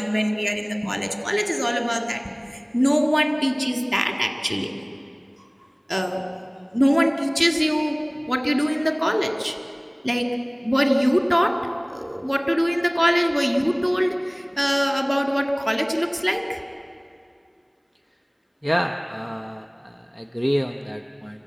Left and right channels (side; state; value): both; identical; correlation 1.00